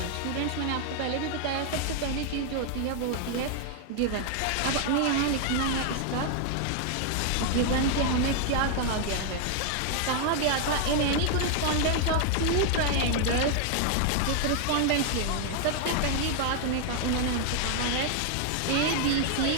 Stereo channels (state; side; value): different; both; correlation 0.00